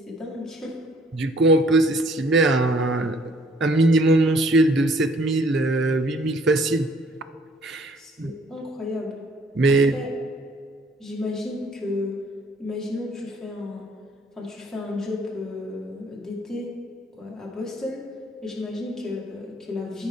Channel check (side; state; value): both; normal; correlation 0.59